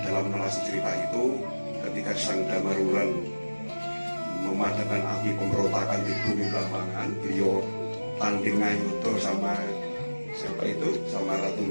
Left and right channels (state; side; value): inverted; both; correlation -1.00